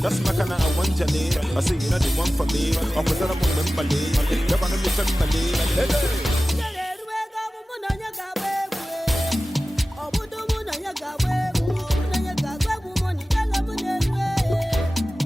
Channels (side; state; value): both; normal; correlation 0.96